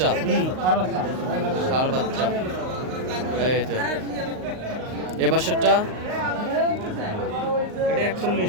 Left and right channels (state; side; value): late; left; 38 ms